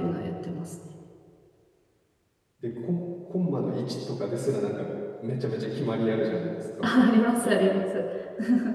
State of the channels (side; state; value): both; identical; correlation 1.00